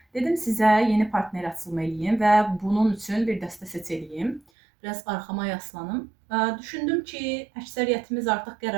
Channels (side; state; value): left; drops out; at 4.4 s